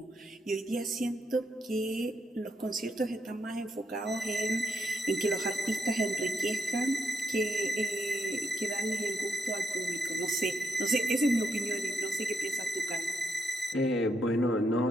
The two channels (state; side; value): normal; both; correlation 0.79